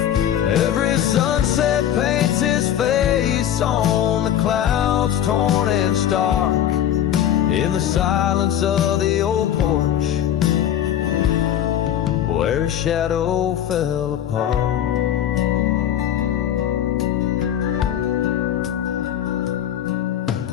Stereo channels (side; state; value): right; quieter; 10.6 dB